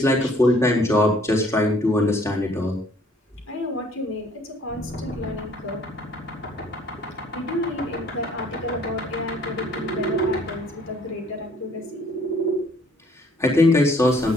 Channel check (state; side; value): normal; both; correlation 0.60